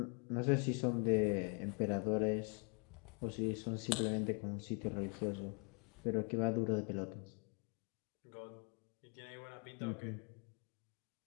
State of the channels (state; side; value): quieter; right; 37.1 dB